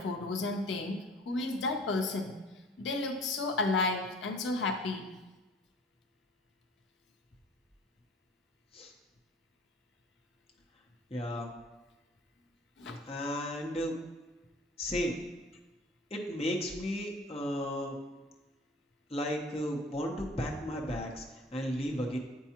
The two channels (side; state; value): both; normal; correlation 0.49